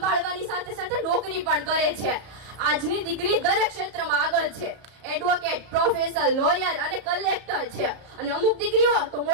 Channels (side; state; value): left; late; 34 ms